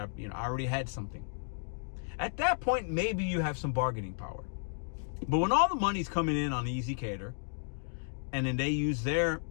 already had something. At that point, maybe you have some bargaining power. But when all the money's coming in on Easy Cater, and then they use their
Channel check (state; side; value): silent; right; digital silence